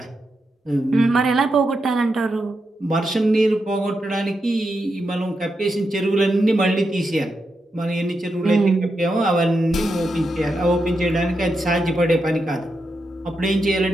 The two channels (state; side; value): normal; both; correlation 0.86